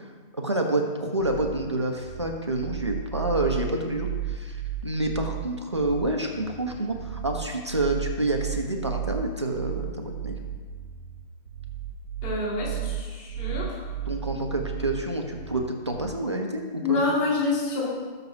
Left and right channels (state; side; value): inverted; both; correlation -0.34